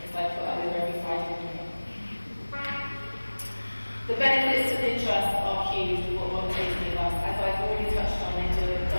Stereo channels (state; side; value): inverted; both; correlation -1.00